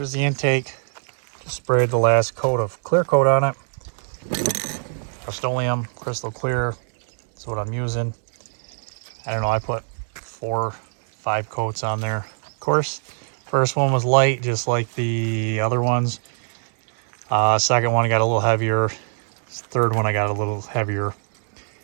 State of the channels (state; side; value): silent; left; digital silence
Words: the intake. Just sprayed the last coat of clear coat on it. Rust-Oleum, crystal clear. That's what I'm using. I don't know, I put 4, 5 coats on there. Of course, first one was light, just like the other ones. Second one got a little heavier. Third one I got a little heavier.